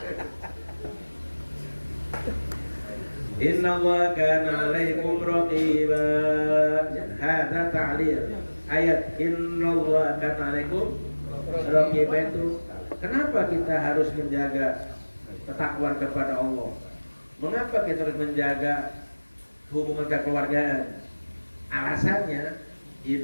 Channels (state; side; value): inverted; both; correlation -1.00